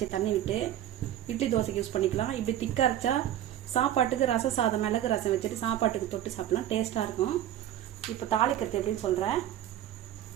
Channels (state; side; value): quieter; left; 12.0 dB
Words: தண்ணி விட்டு இட்லி தோசைக்கு யூஸ் பண்ணிக்கலாம். இப்படி திக்காக அரைச்சா சாப்பாட்டுக்கு ரச சாதம் மிளகு ரசம் வச்சுட்டு சாப்பாட்டுக்கு தொட்டு சாப்பிடலாம், டேஸ்ட்டாக இருக்கும். இப்போ தாளிக்கிறது எப்படின்னு சொல்கிறேன்.